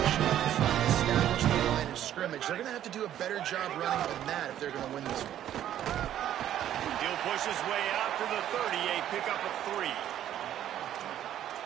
up front, establish the line of scrimmage. They're going to have to do a better job running than that if they're going to win this one. He'll push his way out to the 30, a pickup of 3.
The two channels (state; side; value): quieter; left; 11.3 dB